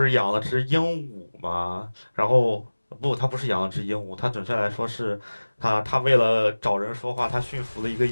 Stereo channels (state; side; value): inverted; both; correlation -1.00